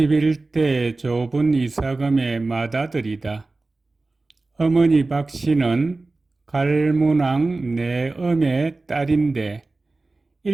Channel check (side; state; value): left; quieter; 3.3 dB